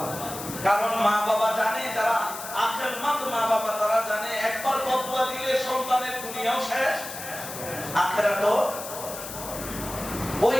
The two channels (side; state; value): left; noise; hiss, 10 dB below the sound